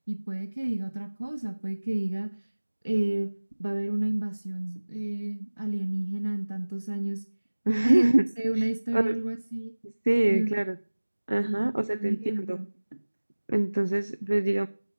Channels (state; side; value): inverted; both; correlation -1.00